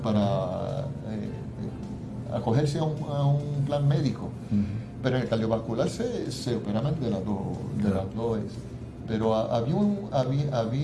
para acogerse a un plan médico. Pero en el cardiovascular se operaban de las dos. Pero había una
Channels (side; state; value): both; identical; correlation 1.00